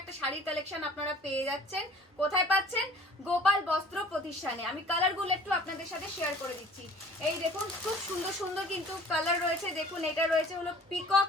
শাড়ির কালেকশন আপনারা পেয়ে যাচ্ছেন। কোথায় পাচ্ছেন? গোপাল বস্ত্র প্রতিষ্ঠানে। আমি কালারগুলো একটু আপনাদের সাথে শেয়ার করে দিচ্ছি। এই দেখুন খুব সুন্দর সুন্দর কিন্তু কালার রয়েছে। দেখুন এটা রয়েছে হলো পিকক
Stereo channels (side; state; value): both; normal; correlation 0.49